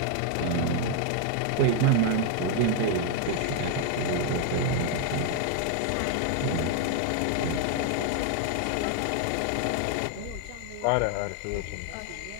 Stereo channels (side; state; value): both; different; correlation 0.01